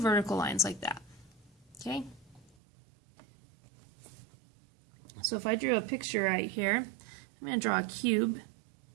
lines like that. Okay? So if I drew a picture right here I'm going to draw a cube.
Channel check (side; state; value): left; drops out; at 2.6 s